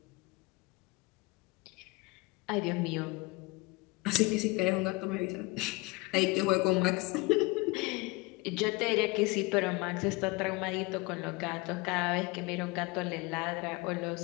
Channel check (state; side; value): quieter; right; 24.4 dB